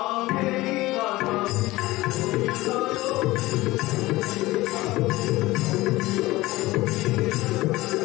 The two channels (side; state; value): right; quieter; 19.0 dB